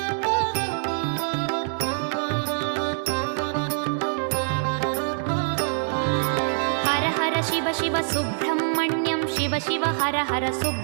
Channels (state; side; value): silent; left; 62 dB below the other